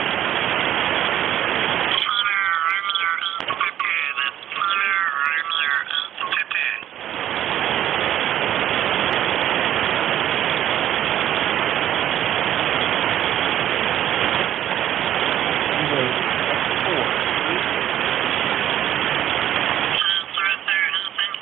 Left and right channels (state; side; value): quieter; left; 11.6 dB